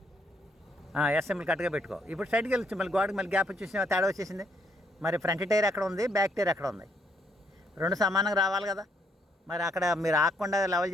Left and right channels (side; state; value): both; normal; correlation 0.71